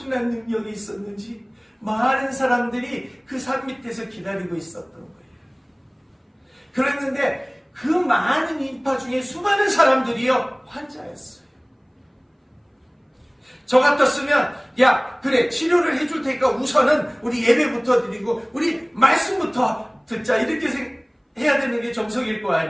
능력이 있었는지 많은 사람들이 그 산 밑에서 기다리고 있었던 거예요. 그랬는데 그 많은 인파 중에 수많은 사람들이요, 환자였어요. 저 같았으면 그래, 치료를 해줄 테니까 우선은 우리 예배부터 드리고 우리 말씀부터 듣자, 이렇게 해야 되는 게 정석일 거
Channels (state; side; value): identical; both; correlation 1.00